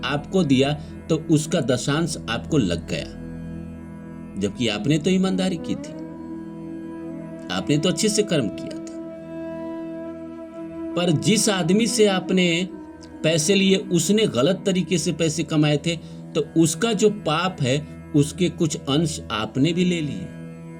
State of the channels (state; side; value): identical; both; correlation 1.00